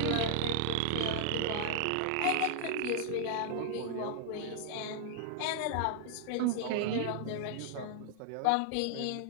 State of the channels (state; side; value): different; both; correlation 0.00